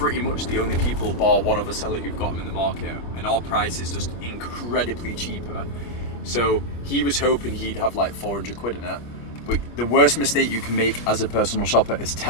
much the only people, bar one other seller, who've got them in the market, and our price is just incredibly cheaper. So he was hoping he'd have like 400 quid in it. But the worst mistake you can make as a personal shopper is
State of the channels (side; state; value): right; late; 25 ms